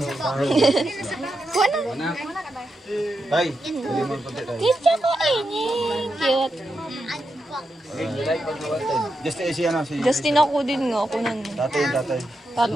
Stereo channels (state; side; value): normal; both; correlation 0.86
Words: Tay. Picture ko ini. Cute. Just si ano si Justin ako din nga. Ako nun. tatay.